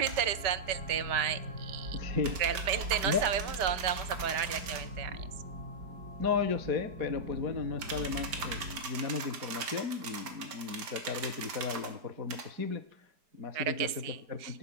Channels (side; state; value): left; late; 4.7 ms